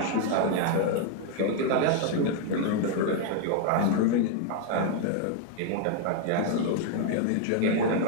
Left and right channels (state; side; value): different; both; correlation 0.00